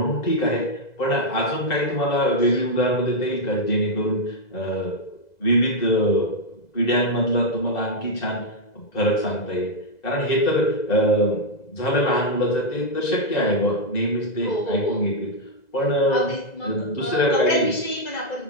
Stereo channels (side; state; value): right; late; 2.0 ms